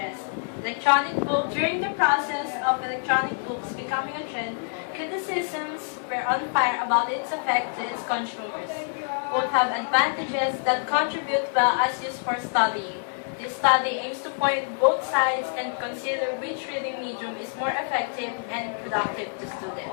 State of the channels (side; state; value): right; silent; 61 dB below the other